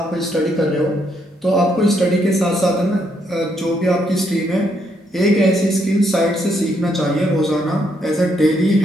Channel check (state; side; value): normal; both; correlation 0.75